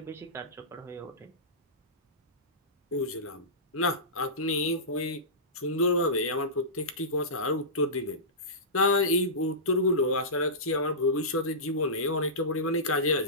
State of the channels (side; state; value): both; normal; correlation -0.19